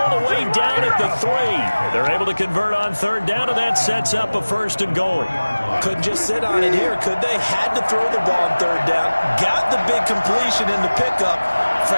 the way down at the 3. They're able to convert on third down, and that sets up a 1st and goal. Couldn't just sit on it here, could they? Had to throw the ball on third down. Got the big completion in the pickup.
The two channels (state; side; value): inverted; both; correlation -1.00